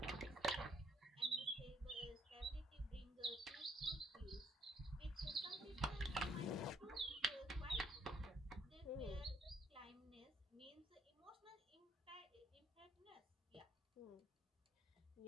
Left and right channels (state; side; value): normal; both; correlation 0.69